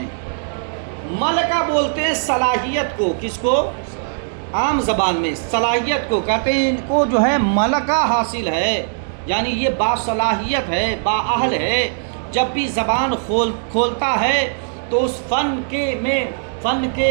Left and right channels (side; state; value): left; silent; digital silence